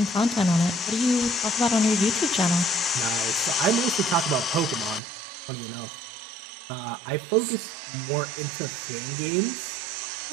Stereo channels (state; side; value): drops out; left; at 5.0 s